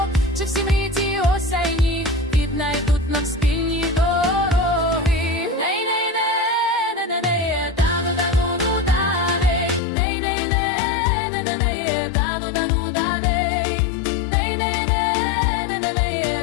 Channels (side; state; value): right; drops out; at 9.8 s